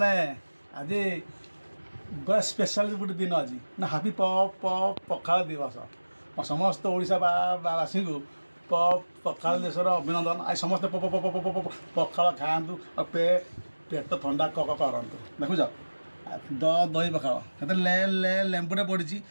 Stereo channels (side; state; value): both; inverted; correlation -1.00